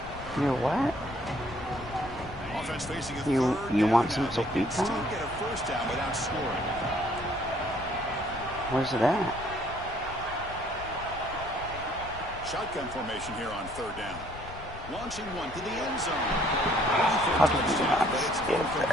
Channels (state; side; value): noise; left; rumble, 13 dB below the sound